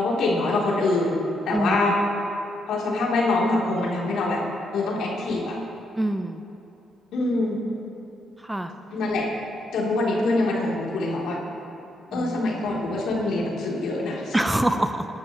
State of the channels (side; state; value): both; normal; correlation 0.78